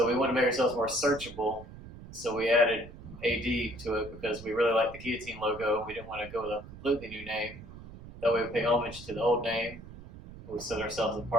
we wanted to make ourselves more searchable. So we added AD to it because we really liked the Guillotine logo. We didn't want to go with a completely new name. That way we pay homage to the old name. We set ourselves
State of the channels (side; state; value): right; noise; rumble, 15 dB below the sound